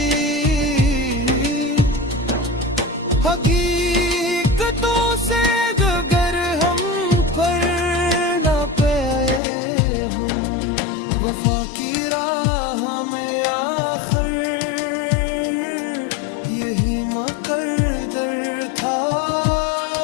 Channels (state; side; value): drops out; right; at 9.4 s